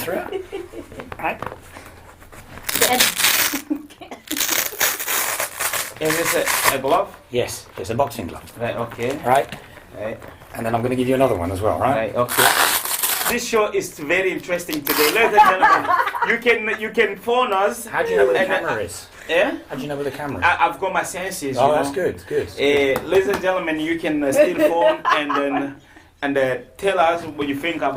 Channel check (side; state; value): both; identical; correlation 1.00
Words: it. Right. is this a glove? Yes, it's a boxing glove. Right. Okay. Right? Right. And then I'm going to give you another one as well, right? Right. Okay. This show is very interesting today, ladies and gentlemen. You can phone us. How do you know where the and, camera is? Yeah. How do you know where the camera is? I've got my senses. Oh, you that's know. good, good. Ladies and gentlemen, you can still phone and tell us what you think